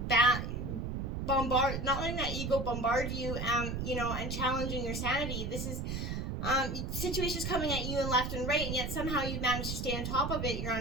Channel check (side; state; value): right; noise; rumble, 3 dB below the sound